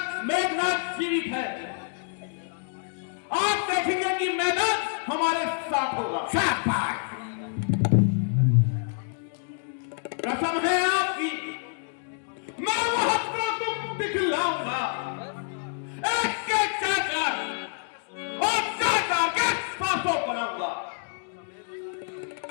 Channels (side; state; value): right; silent; 60 dB below the other